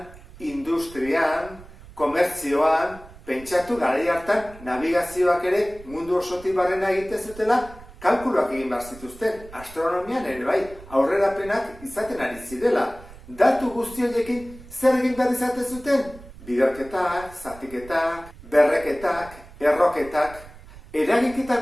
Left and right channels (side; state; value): right; noise; rumble, 19 dB below the sound